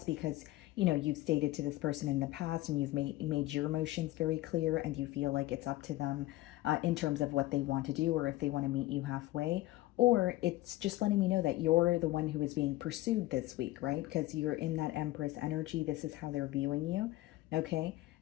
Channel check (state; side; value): quieter; right; 17.2 dB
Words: because you've stated to this person in the past and you've made your emotions very clear and you feel like it's up to them in terms of what they want to do or if they want to meet you halfway, or it's just letting me know that you're the one who is being pursued this week, right? Because you're in that Empress energy. This is how they're viewing you. Okay.